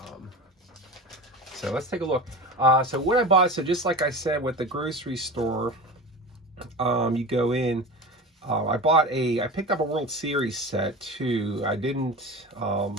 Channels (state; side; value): normal; both; correlation 0.31